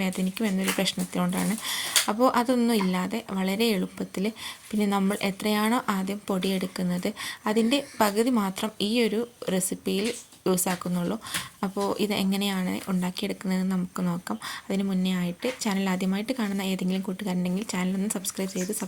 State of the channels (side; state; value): both; identical; correlation 1.00